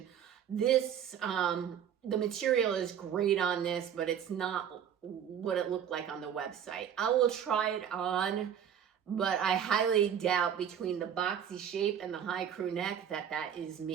This, the material is great on this, but it's not what it looked like on the website. I will try it on, but I highly doubt, between the boxy shape and the high crew neck, that is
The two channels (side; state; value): left; quieter; 8.8 dB